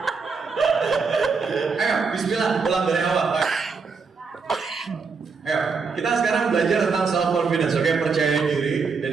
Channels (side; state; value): left; quieter; 5.0 dB